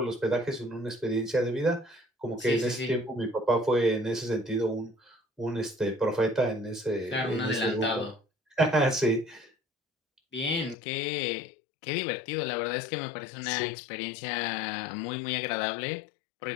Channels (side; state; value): right; drops out; at 10.8 s